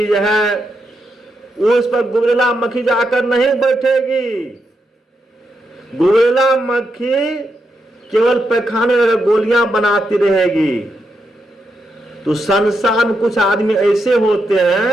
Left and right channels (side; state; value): both; normal; correlation 0.83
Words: है, उस पर गुबरेला मक्खी जाकर नहीं बैठेगी। गुबरेला मक्खी केवल पैखाने में गोलियां बनाती रहेगी। तो संसार में कुछ आदमी ऐसे होते